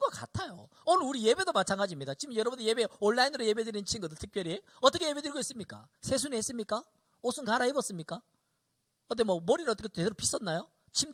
같아요. 오늘 우리 예배도 마찬가지입니다. 지금 여러분들 예배 온라인으로 예배 드리는 친구들 특별히 어떻게 예배 드리고 있습니까? 세수는 했습니까? 옷은 갈아입었습니까? 어때 뭐 머리를 어떻게 제대로 빗었나요?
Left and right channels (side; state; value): both; identical; correlation 1.00